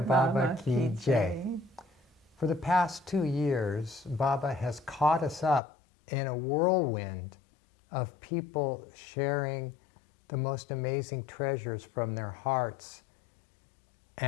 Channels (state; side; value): drops out; right; at 5.6 s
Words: Baba Ki Jai. For the past 2 years, Baba has caught us up in a whirlwind of people sharing the most amazing treasures from their hearts.